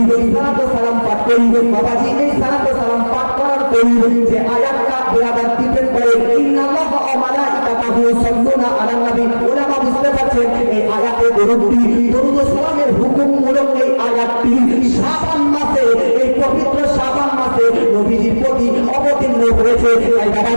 সালাত ও সালাম পাঠ করি। বাবাজি এই সালাত ও সালাম পাঠ করার করি যে আয়াতটা বিরাদার ডিপেন্ড করে ইন্নাল্লাহ ওয়া মালাইকাতাহু ইউসাল্লুনা আলান নবী। ওলামা বুঝতে পারছেন এই আয়াতে দরুদ ও সালামের হুকুমমূলক এই আয়াতটি শাবান মাসে এই পবিত্র শাবান মাসে নবীজির প্রতি অবতীর্ণ হয়েছে। তাই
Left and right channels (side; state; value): both; inverted; correlation -1.00